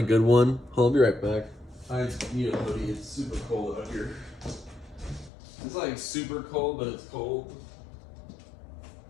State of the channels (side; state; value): right; drops out; at 5.3 s